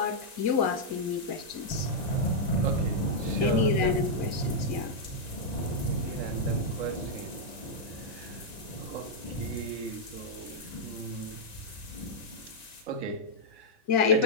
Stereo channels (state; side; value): late; right; 1.9 ms